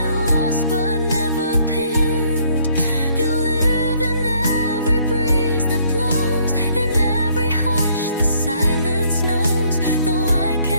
lost but never pinned. You live in every breeze that blows, in every hush the silence knows. Though I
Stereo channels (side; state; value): both; inverted; correlation -0.64